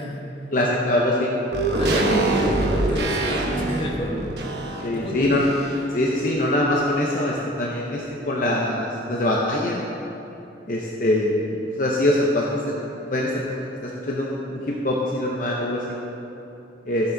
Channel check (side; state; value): both; normal; correlation 0.43